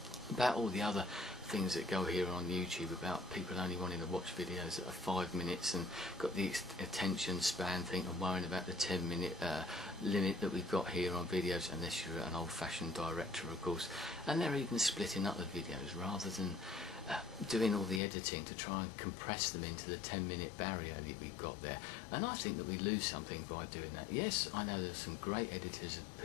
about all the other things that go here on YouTube about people only wanting to watch videos that are 5 minutes and got the attention span thing, and worrying about the 10-minute limit that we've got here on videos, unless you're an old-fashioned director, of course. And they're even splitting up the videos rather than doing all the editing to try and compress them into the 10-minute barrier that we've got there. And I think that we lose something by doing that. Yes, I know there's some great editors of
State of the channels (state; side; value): drops out; right; at 18.0 s